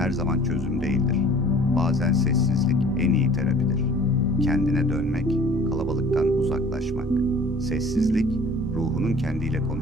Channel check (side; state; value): both; normal; correlation 0.50